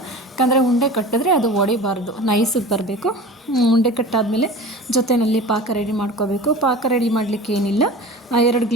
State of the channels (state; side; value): normal; both; correlation 0.36